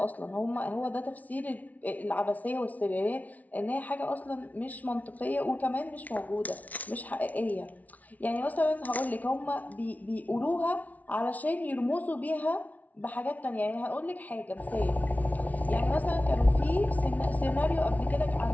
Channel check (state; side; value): late; right; 0.073 ms